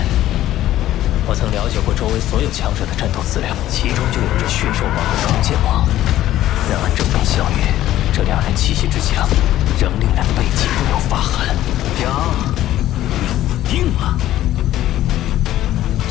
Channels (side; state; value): right; quieter; 13.6 dB